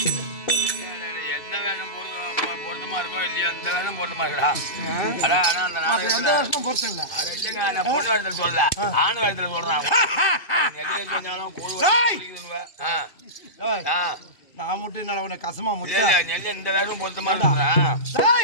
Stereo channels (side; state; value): right; late; 2.5 ms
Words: சொல்ல ஆணு வேடத்துல சொல்றான் நான் மட்டும் என்ன உன கசமா முடியல நெல்ல இந்த வேகம் பொருத்தமா